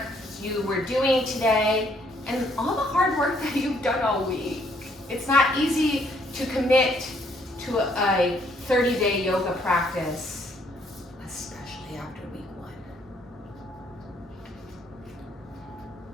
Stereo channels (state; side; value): normal; both; correlation 0.67